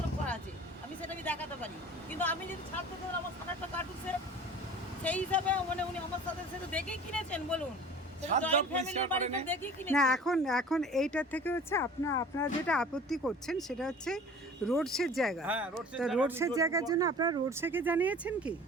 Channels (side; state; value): both; normal; correlation 0.43